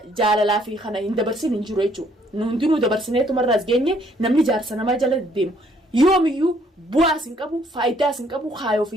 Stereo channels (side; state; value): both; normal; correlation 0.65